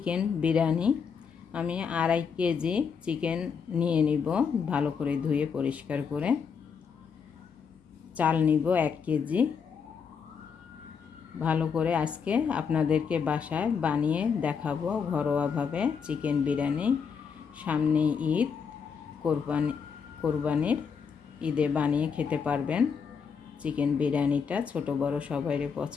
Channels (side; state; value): right; quieter; 6.3 dB